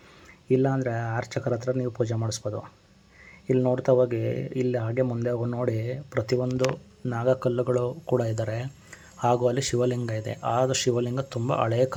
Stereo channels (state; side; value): identical; both; correlation 1.00